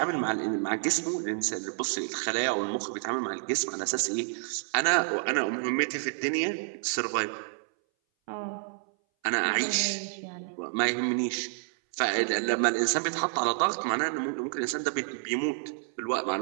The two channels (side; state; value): left; silent; 58 dB below the other